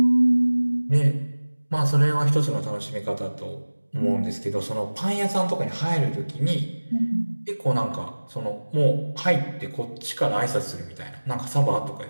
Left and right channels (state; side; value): inverted; both; correlation -1.00